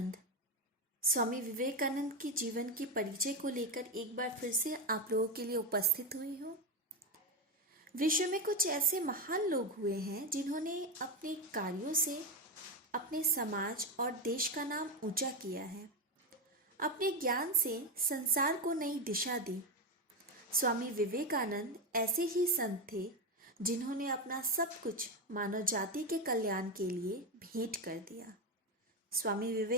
के जीवन के परिचय को लेकर एक बार फिर से आप लोगों के लिए उपस्थित हुई हूँ। विश्व में कुछ ऐसे महान लोग हुए हैं जिन्होंने अपने कार्यों से अपने समाज और देश का नाम ऊंचा किया है। अपने ज्ञान से संसार को नई दिशा दी। स्वामी विवेकानंद ऐसे ही संत थे जिन्होंने अपना सब कुछ मानव जाति के कल्याण के लिए भेंट कर दिया। स्वामी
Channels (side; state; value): both; normal; correlation 0.11